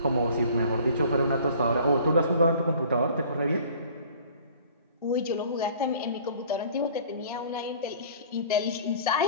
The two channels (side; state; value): both; inverted; correlation -0.49